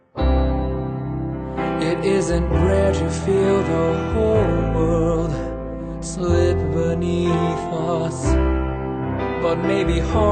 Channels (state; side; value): identical; both; correlation 1.00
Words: it isn't rare to feel the whole world slip beneath us, but maybe